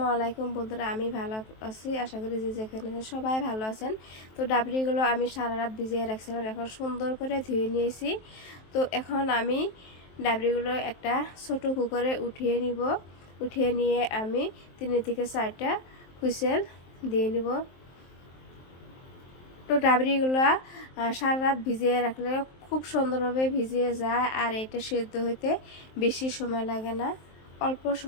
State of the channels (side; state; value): right; late; 23 ms